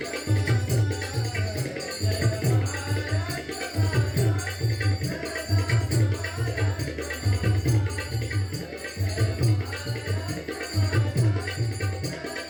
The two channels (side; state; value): both; identical; correlation 1.00